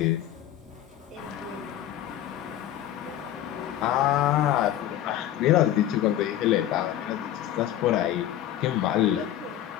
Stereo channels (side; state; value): right; quieter; 12.1 dB